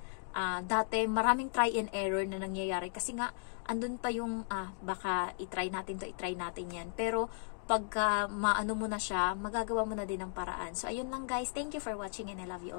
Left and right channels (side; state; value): right; silent; digital silence